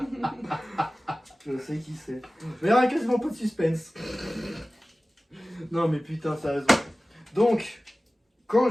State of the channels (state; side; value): normal; both; correlation 0.97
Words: Je sais qui c'est. Mais il n'y a quasiment pas de suspense. Non mais putain, sérieusement. Donc, quand